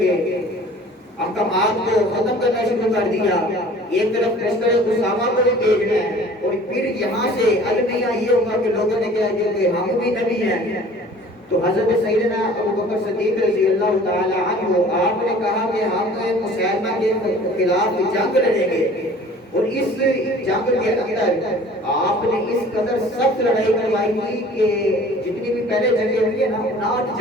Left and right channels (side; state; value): both; normal; correlation 0.48